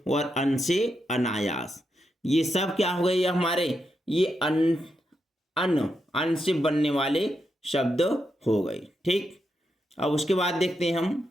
अन से अनायास, ये सब क्या हो गए? ये हमारे ये अन से बनने वाले शब्द हो गए। ठीक, अब उसके बाद देखते हैं हम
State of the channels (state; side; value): normal; both; correlation 0.84